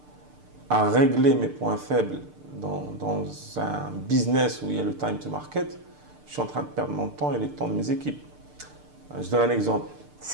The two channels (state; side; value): late; left; 6.7 ms